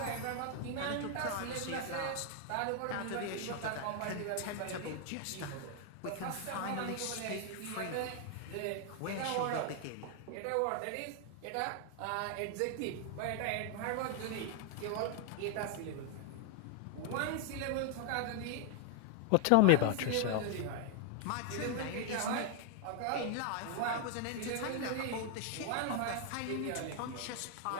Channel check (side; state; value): both; different; correlation 0.00